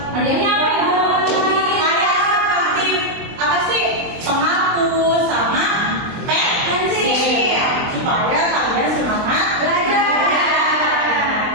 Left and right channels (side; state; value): left; late; 23 ms